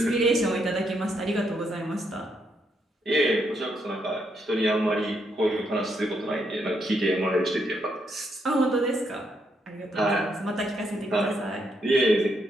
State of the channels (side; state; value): both; normal; correlation 0.77